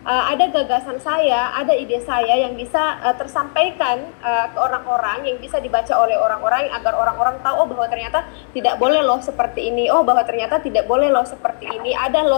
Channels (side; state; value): right; silent; 67 dB below the other